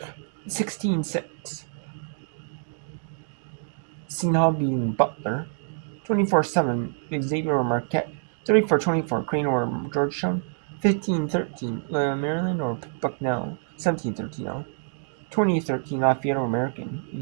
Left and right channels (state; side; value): silent; left; digital silence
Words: 16-6 Seton Hall beating Butler. 24-7 Xavier over Marquette. 34-24 Crane over Georgetown. 15-13 Maryland over Bucknell. 17-13 20-13 Lafayette over